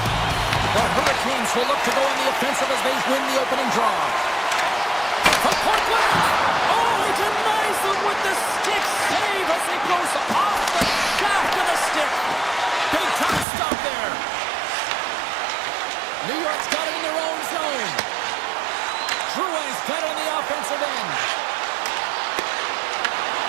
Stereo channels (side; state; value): left; drops out; at 13.5 s